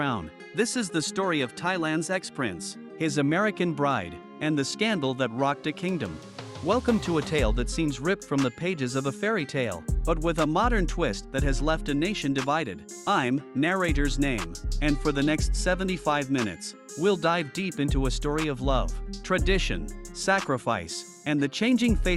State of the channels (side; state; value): both; identical; correlation 1.00